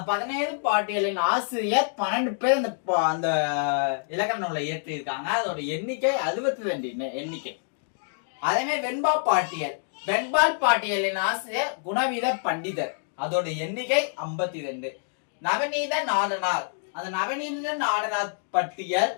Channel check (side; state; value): right; silent; digital silence